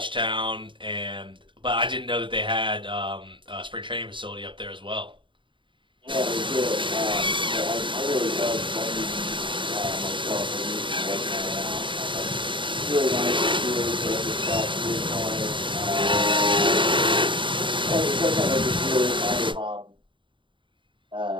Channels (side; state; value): left; late; 0.24 ms